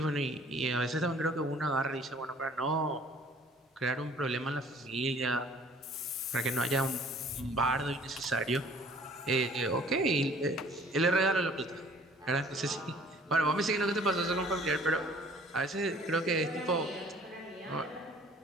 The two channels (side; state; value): both; normal; correlation 0.54